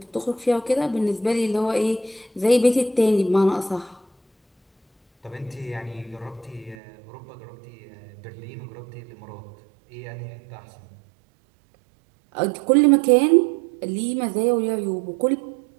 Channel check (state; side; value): drops out; left; at 6.8 s